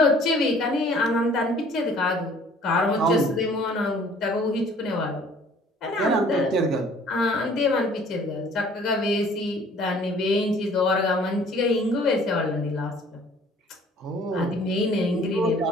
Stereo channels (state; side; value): normal; both; correlation 0.54